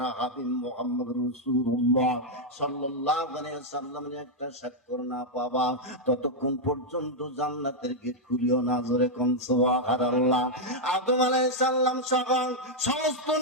হাবিব মুহাম্মদ রাসূলুল্লাহ সাল্লাল্লাহু আলাইহি ওয়াসাল্লামের একটা স্বাক্ষর না পাবা, ততক্ষণ পর্যন্ত জান্নাতের গেট খুলিও না। জোরে কোন সুবহানাল্লাহ। আদম আলাইহিস সালাম সহ সমস্ত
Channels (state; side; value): normal; both; correlation -0.02